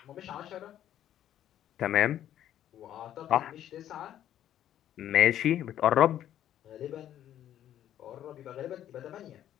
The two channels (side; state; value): right; quieter; 11.3 dB